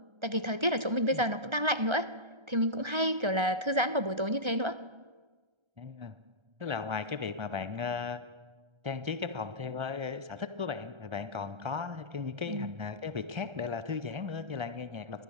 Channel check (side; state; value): left; late; 1.3 ms